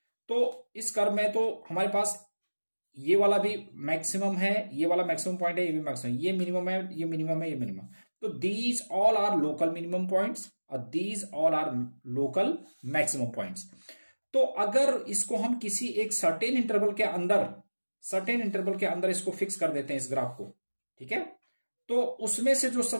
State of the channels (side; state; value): both; inverted; correlation -1.00